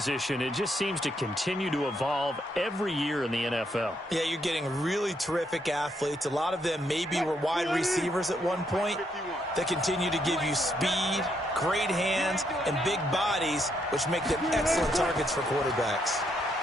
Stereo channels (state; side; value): normal; both; correlation 0.75